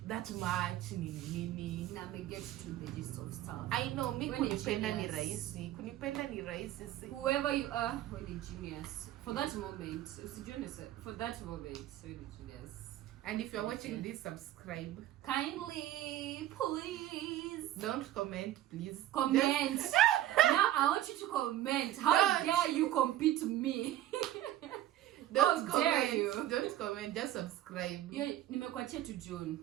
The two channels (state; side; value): quieter; left; 13.4 dB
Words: that much nini. Now me get to the gist of stuff. I know, me When kunipenda ni genius. rahisi. Kunipenda ni rahisi. Whoever you are, when you're genius. For that moment, for that moment, when you're genius. And if you're watching this, subscribe. Kindly, please. Don't comment, please. Comment. Just... Now I want you to comment. How dare you compete me? Don't How dare comment. you? Don't comment. Just subscribe. Nimekuachia to June.